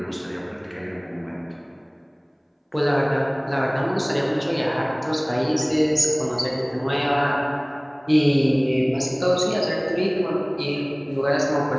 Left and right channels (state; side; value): identical; both; correlation 1.00